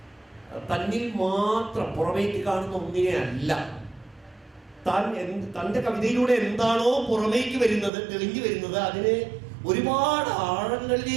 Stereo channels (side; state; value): left; drops out; at 7.9 s